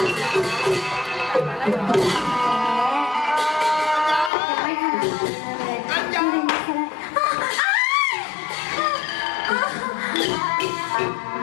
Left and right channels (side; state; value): right; drops out; at 4.3 s